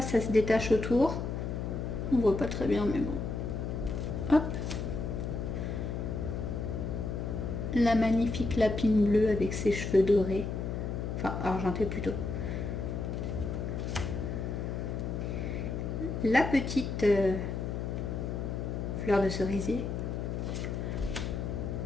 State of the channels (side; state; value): left; noise; hum, 3 dB below the sound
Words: se détache autour. On voit pas très bien, mais bon. Hop. La magnifique lapine bleue avec ses cheveux dorés. Enfin, argenté plutôt. La petite fleur de cerisier.